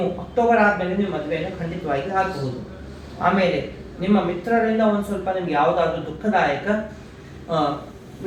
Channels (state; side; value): identical; both; correlation 1.00